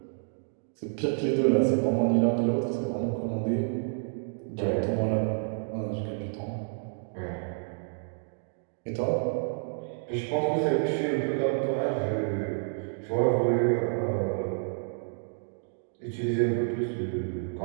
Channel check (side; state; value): left; silent; digital silence